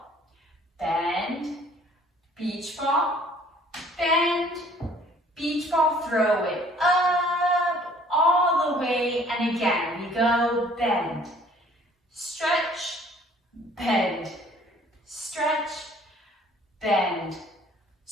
bend, beach ball, bend, beach ball, throw it up, all the way, and again, we go bend, stretch, bend, stretch, bend,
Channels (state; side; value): normal; both; correlation 0.56